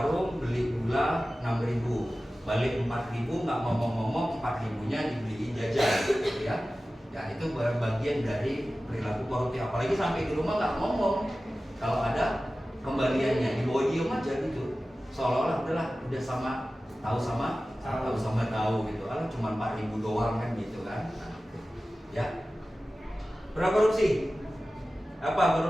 beli gula 6.000. Balik 4.000, nggak ngomong-ngomong 4.000-nya dibeliin jajan gitu ya. Ya itu bagian dari perilaku korupsi. Apalagi sampai di rumah nggak ngomong. Kalau ada kembaliannya dibawa diem aja gitu. Seolah-olah udah sama tahu gitu. Kalau cuma 4.000 doang kan gitu kan. Ya. Berapa korupsi? Apa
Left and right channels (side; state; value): both; normal; correlation 0.96